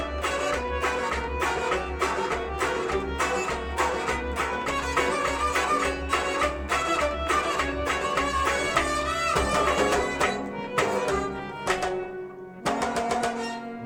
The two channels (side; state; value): both; identical; correlation 1.00